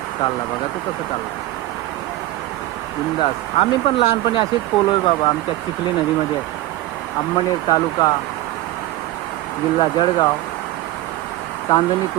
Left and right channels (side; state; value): left; quieter; 16.5 dB